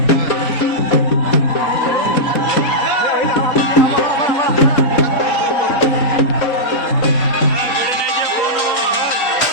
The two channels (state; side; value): late; right; 4.0 ms